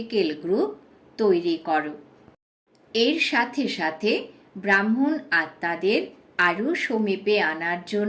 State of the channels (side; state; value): both; identical; correlation 1.00